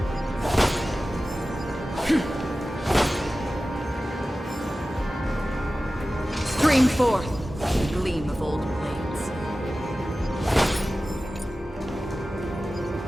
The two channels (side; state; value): both; normal; correlation 0.95